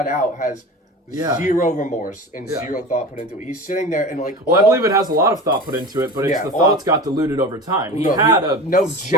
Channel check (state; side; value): normal; both; correlation 0.32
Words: out has Yeah. Zero remorse and zero thought put into it. He's sitting there and like... Well, I believe it has a lot of thought put into it, but it's the thoughts got diluted over time. He had a